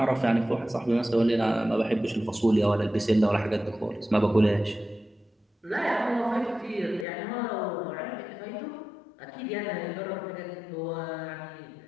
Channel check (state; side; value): drops out; right; at 7.1 s